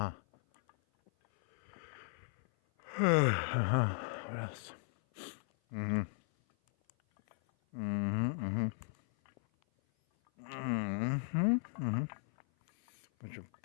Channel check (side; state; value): right; silent; 54 dB below the other